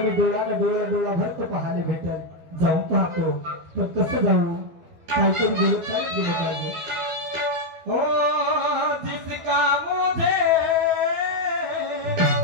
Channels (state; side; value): late; left; 12 ms